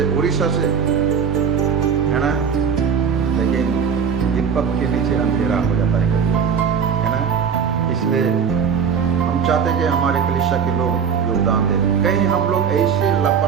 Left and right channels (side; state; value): left; quieter; 6.8 dB